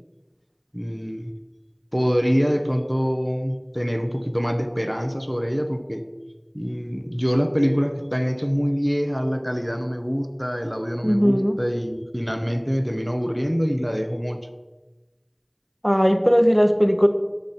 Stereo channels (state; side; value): identical; both; correlation 1.00